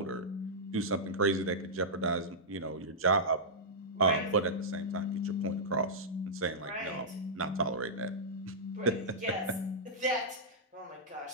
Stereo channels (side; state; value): both; normal; correlation -0.13